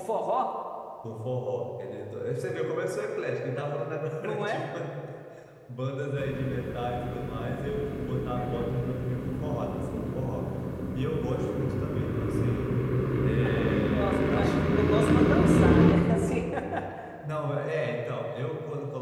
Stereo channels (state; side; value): identical; both; correlation 1.00